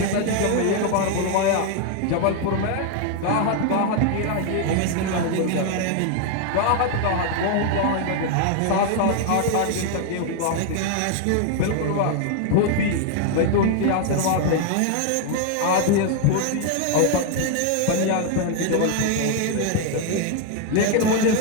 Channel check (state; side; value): different; both; correlation 0.00